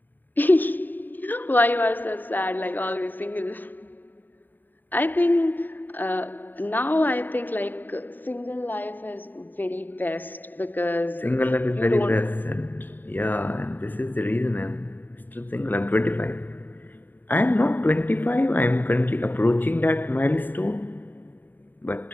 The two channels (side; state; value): right; late; 0.090 ms